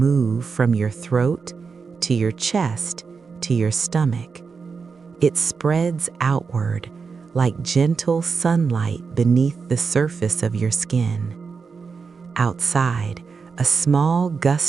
from your throat to your chest to your stomach. It spreads outward like gentle sunlight beneath the surface of your skin. Outside, a small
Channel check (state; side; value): quieter; left; 5.2 dB